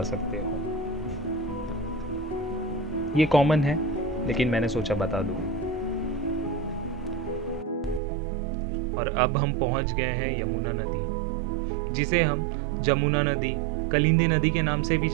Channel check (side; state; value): left; drops out; at 8.0 s